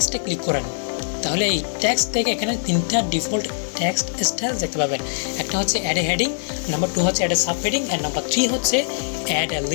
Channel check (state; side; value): silent; right; digital silence